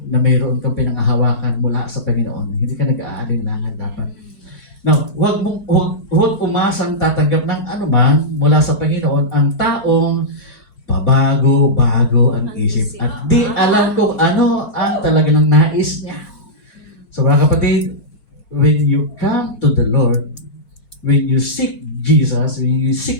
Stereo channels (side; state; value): right; late; 5.6 ms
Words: na mayroon kang pinangahawakan mula sa Panginoon, hindi ka nag-aalinlangan dapat. Now, huwag umasang tatanggap ng anuman mula sa Panginoon ang taong pabago-bago ang isip at di alam kung ano ang talagang nais niya. So mga kapatid, when you come to the Lord, when you seek Jesus, when you